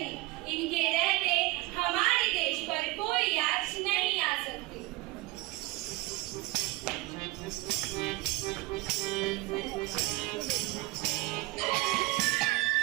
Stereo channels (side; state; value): left; quieter; 20.4 dB